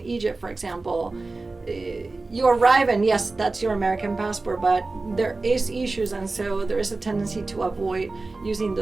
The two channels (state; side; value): quieter; left; 3.5 dB